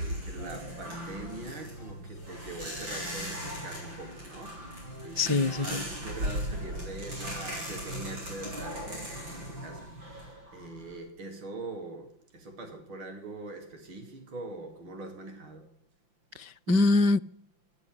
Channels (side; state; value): left; late; 5.8 ms